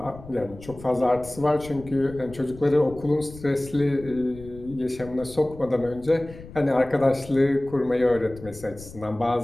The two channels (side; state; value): left; noise; rumble, 17 dB below the sound